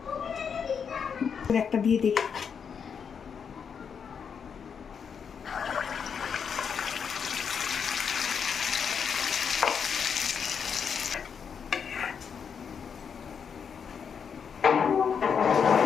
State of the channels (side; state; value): right; quieter; 6.8 dB